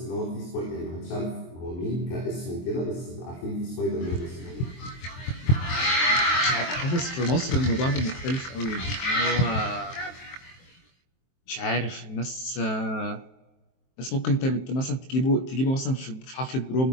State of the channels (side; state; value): right; late; 23 ms